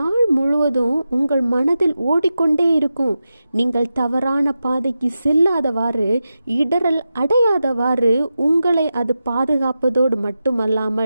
முழுவதும் உங்கள் மனதில் ஓடிக்கொண்டே இருக்கும். நீங்கள் தவறான பாதைக்கு செல்லாதவாறு, இடரல் அடையாதவாறு உங்களை அது பாதுகாப்பதோடு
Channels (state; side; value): inverted; both; correlation -0.91